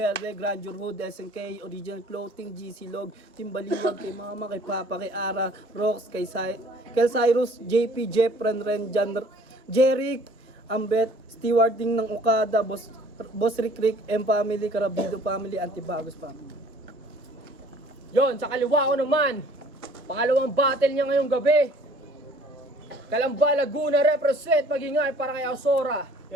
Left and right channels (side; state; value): both; normal; correlation 0.54